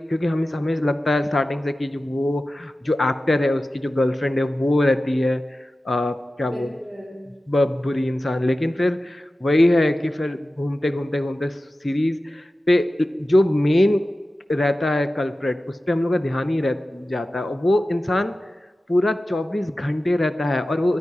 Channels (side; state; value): both; normal; correlation 0.95